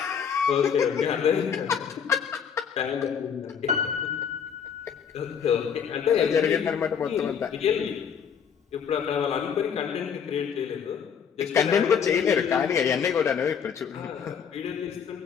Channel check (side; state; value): right; quieter; 7.3 dB